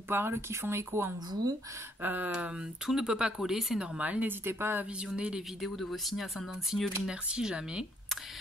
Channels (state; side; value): normal; both; correlation 0.69